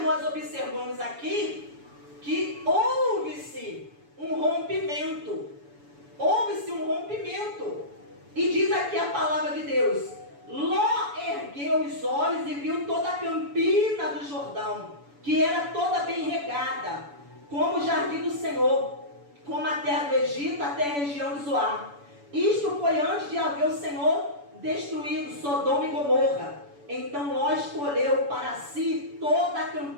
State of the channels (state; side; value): late; left; 7.0 ms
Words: nós observamos aqui que houve-se um rompimento. Houve-se um rompimento. E diz aqui a palavra de Deus: Ló ergueu os olhos e viu toda a campina do Jordão, que era toda bem regada, como o jardim do Senhor, como a terra do Egito, até a região de Zoar. Isto foi antes de haver o Senhor destruído Sodoma e Gomorra. Então Ló escolheu para si toda a